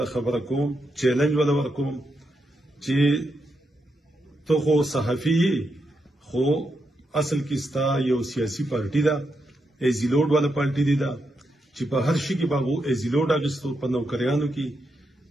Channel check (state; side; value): normal; both; correlation 0.83